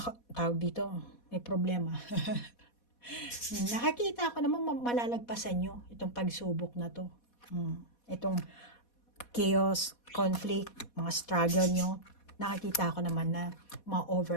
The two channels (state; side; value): late; right; 4.2 ms